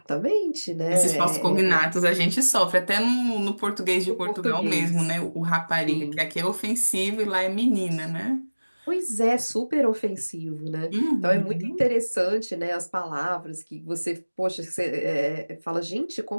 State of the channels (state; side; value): inverted; both; correlation -1.00